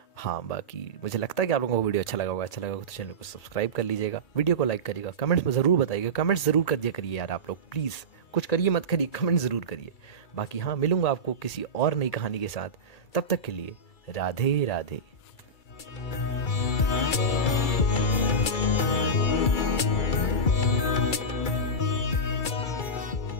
हाँ, बाकी मुझे लगता है कि आप लोगों को वीडियो अच्छा लगा होगा। अच्छा लगा होगा तो चैनल को सब्सक्राइब कर लीजिएगा, वीडियो को लाइक करिएगा, कमेंट्स में ज़रूर बताइएगा, कमेंट्स ज़रूर कर दिया करिए यार आप लोग, प्लीज़ कुछ करिए मत करिए, कमेंट ज़रूर करिए। बाकी हाँ, मिलूंगा आपको किसी और नई कहानी के साथ, तब तक के लिए राधे राधे।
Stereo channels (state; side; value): late; right; 2.3 ms